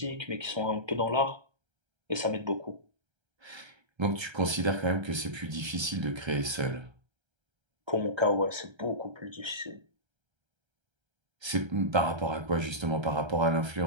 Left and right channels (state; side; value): late; left; 1.3 ms